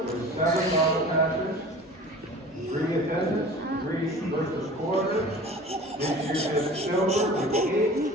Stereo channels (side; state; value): both; normal; correlation 0.41